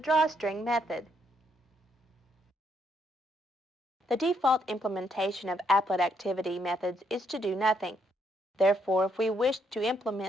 method. The default implementation of applet activity methods is to do nothing. Therefore, if we wish to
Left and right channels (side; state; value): both; normal; correlation 0.74